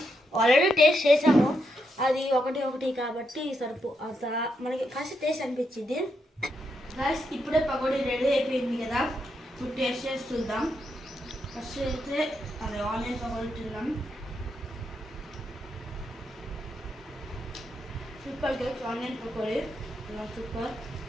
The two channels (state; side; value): normal; both; correlation 0.81